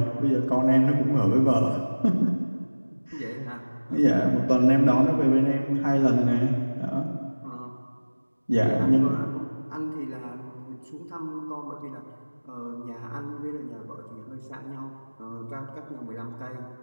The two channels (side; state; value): both; inverted; correlation -1.00